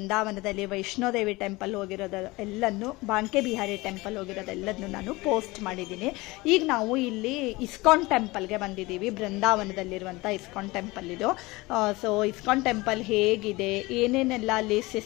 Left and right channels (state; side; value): quieter; right; 21.9 dB